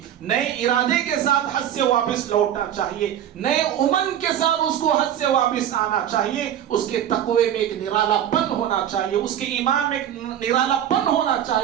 نئے ارادے کے ساتھ حج سے واپس لوٹنا چاہیے, نئے امن کے ساتھ اس کو حج سے واپس آنا چاہیے. اس کے تقوی میں ایک نرالا پن ہونا چاہیے, اس کے ایمان میں ایک نرالا پن ہونا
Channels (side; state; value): left; quieter; 10.6 dB